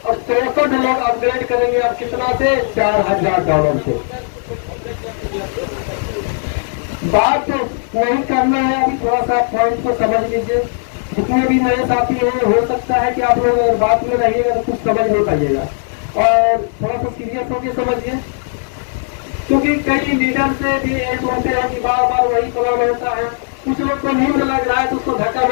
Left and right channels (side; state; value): right; silent; digital silence